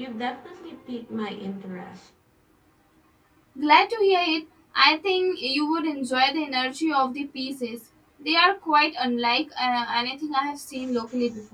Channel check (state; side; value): identical; both; correlation 1.00